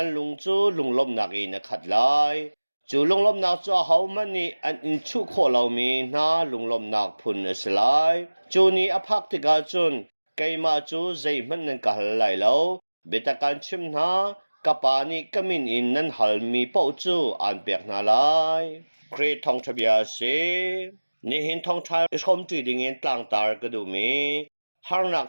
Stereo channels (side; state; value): both; inverted; correlation -1.00